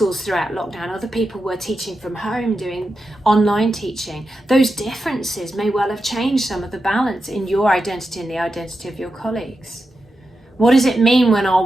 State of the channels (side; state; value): both; normal; correlation 0.89